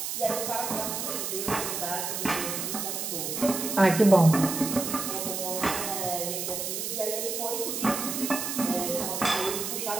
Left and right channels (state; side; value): noise; right; hiss, 3 dB below the sound